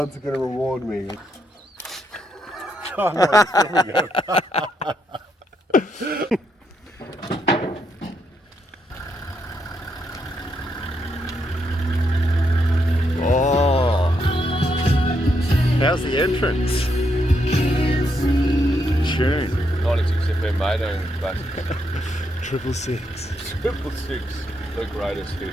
are going to reward me. Oh, no, here we go. Oh, how's the entrance? Tune. 96 FM mate, and basically 666. 666, the greatest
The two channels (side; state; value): both; normal; correlation 0.78